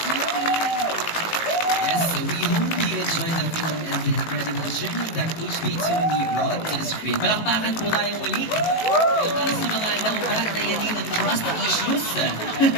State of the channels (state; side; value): late; right; 18 ms